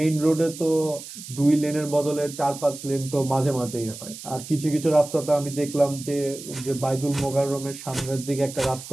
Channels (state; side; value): noise; right; hiss, 13 dB below the sound